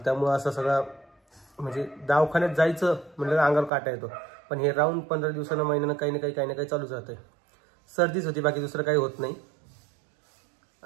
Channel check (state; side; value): drops out; left; at 3.7 s